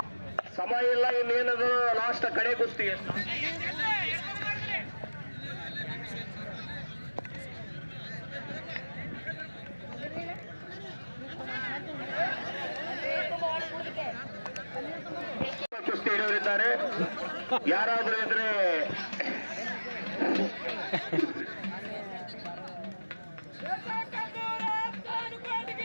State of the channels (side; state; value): both; inverted; correlation -1.00